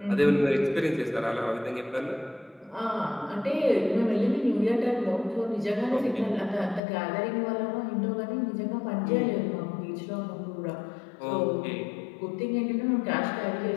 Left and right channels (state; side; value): drops out; right; at 6.8 s